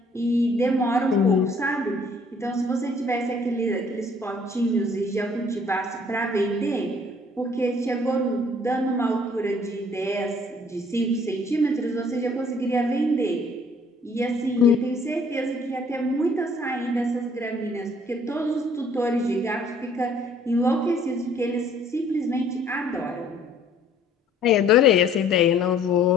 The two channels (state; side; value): normal; both; correlation 0.59